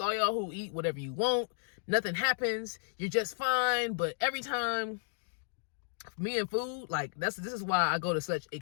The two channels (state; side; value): silent; right; digital silence